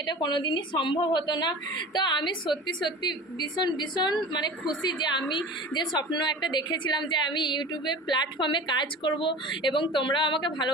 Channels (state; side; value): normal; both; correlation 0.36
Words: এটা কোনোদিনই সম্ভব হতো না। তো আমি সত্যি সত্যি ভীষণ ভীষণ মানে খুশি যে আমি যে স্বপ্ন একটা দেখেছিলাম যে আমি ইউটিউবে প্ল্যাটফর্মে কাজ করব এবং তোমরাও আমাকে